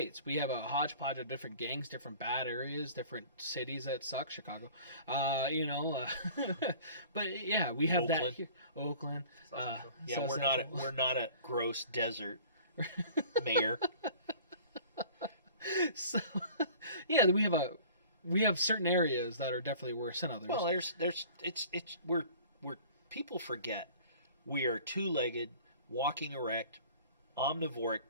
we have a hodgepodge of different gangs, different bad areas, different cities that suck. Chicago, you know, but yeah, we have Oakland. that here. Oakland. Yeah, we're not a gross desert, mayor. So, yeah, we have certain areas that are definitely worse than others. Well, we're people forget we are 2-legged, walking erect, omnivoric,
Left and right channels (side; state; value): both; inverted; correlation -0.46